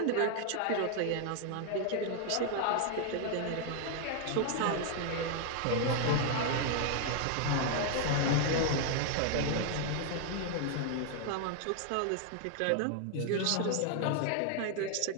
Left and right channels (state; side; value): different; both; correlation 0.00